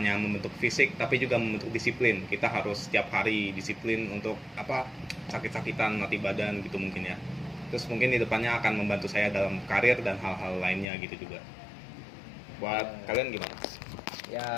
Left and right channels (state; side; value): drops out; right; at 10.9 s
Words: membentuk fisik tapi juga membentuk disiplin. Kita harus setiap hari disiplin untuk sakit-sakitan mati badan gitu mungkin ya. Terus mungkin di depannya akan membantu saya dalam karir dan hal-hal lainnya gitu juga. Buat kalian gimana?